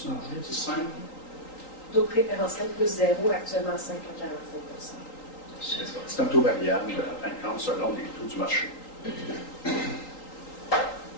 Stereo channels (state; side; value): late; right; 3.8 ms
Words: marché, C'est simple. taux préférentiel plus 0, actuellement 5,45 %. C'est un taux variable, en fin de compte, selon les taux du marché.